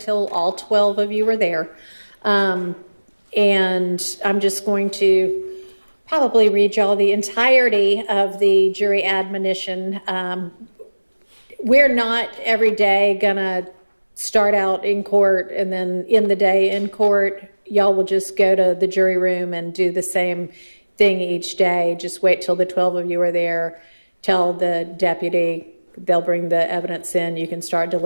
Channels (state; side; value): inverted; both; correlation -1.00